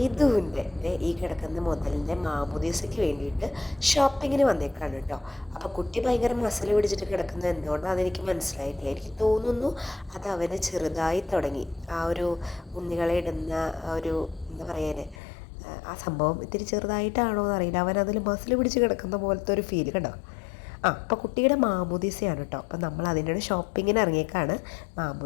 ഈ കിടക്കുന്ന മുതലിൻ്റെ മാമോദീസയ്ക്ക് വേണ്ടിയിട്ട് ഷോപ്പിങ്ങിന് വന്നേക്കാണ് കേട്ടോ. അപ്പോൾ കുട്ടി ഭയങ്കര മസിൽ പിടിച്ചിട്ട് കിടക്കുന്നത് എന്തുകൊണ്ടാണെന്ന് എനിക്ക് മനസ്സിലായിട്ടില്ല. എനിക്ക് തോന്നുന്നു അത് അവന് ചെറുതായി തുടങ്ങി. ആ ഒരു ഉണ്ണികളെ ഇടുന്ന ഒരു എന്താ പറയാന് ആ സംഭവം ഇത്തിരി ചെറുതായിട്ടാണോ എന്നറിയില്ല. അവൻ അതിൽ മസിൽ പിടിച്ച് കിടക്കുന്ന പോലത്തെ ഒരു ഫീൽ കണ്ടോ. അപ്പോൾ കുട്ടിയുടെ മാമോദീസയാണ് കേട്ടോ. അപ്പോൾ നമ്മൾ അതിൻ്റെ ഷോപ്പിങ്ങിന് ഇറങ്ങിയേക്കാണ്.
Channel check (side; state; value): right; drops out; at 15.2 s